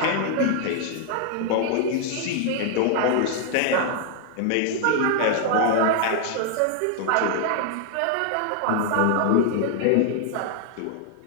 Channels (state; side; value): different; both; correlation 0.00